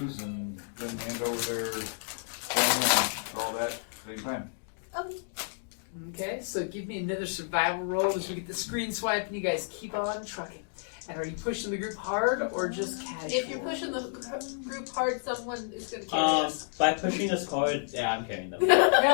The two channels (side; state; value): right; silent; digital silence